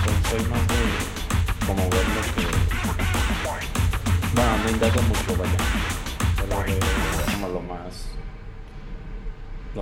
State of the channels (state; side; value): identical; both; correlation 1.00